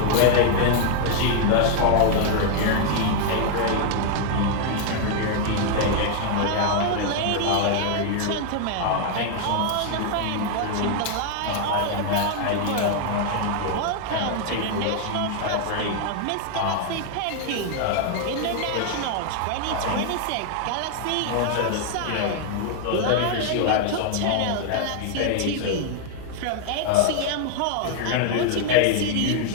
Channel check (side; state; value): both; different; correlation 0.00